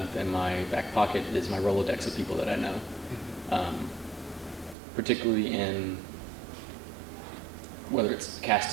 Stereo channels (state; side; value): drops out; left; at 4.8 s